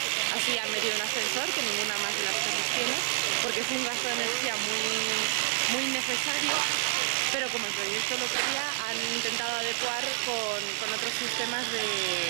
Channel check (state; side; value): silent; left; digital silence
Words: Así han metido un ascensor, que ninguna más de las casas tiene, porque es un gasto de energía muy innecesario, pero como el proyecto lo pedía, han intentado adecuar con otros sistemas